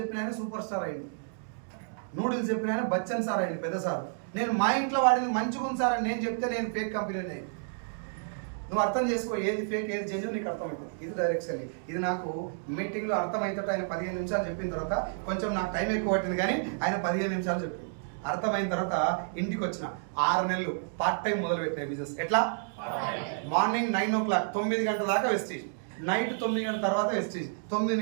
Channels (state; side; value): silent; left; digital silence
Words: ఆయన సూపర్ స్టార్ అయింది, నూడిల్స్ చెప్పిన ఆయన బచ్చన్ సార్ అయింది, పెద్ద సార్. నేను మా ఇంట్లో వాడింది మంచిగా ఉంది సార్ అని నేను చెప్తే నేను ఫేక్ కంపెనీని అయింది. నువ్వు అర్థం చేసుకో, ఏది ఫేక్ ఏది జెన్యూన్ నీకు అర్థమవుతుంది. ఇది డైరెక్ట్ సెల్లింగ్. ఇది నాకు మీటింగ్లో అర్థమైతే ఆయన 15 నిమిషాలు చెప్పిన తర్వాత కొంచెం నాకు టైం ఎక్కువ పట్టింది, కానీ ఆయన 15 నిమిషాలు చెప్పింది. అర్థమైన తర్వాత ఇంటికి వచ్చిన 6 నెలలు పార్ట్ టైం మొదలు పెట్టాయి బిజినెస్. ఎట్లా? మార్నింగ్ 9 o'clock 9 గంటల దాకా వెస్టీజ్, నైట్ 9 గంటల తర్వాత వెస్టీజ్, 9